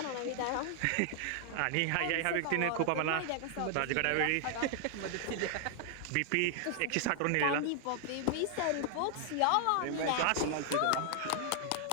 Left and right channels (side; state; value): both; different; correlation 0.00